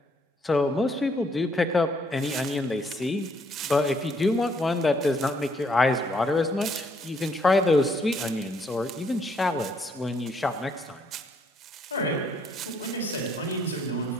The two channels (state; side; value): normal; both; correlation 0.69